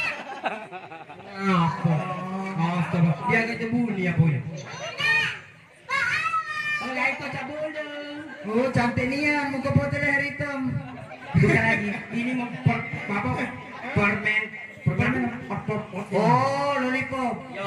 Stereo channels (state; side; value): identical; both; correlation 1.00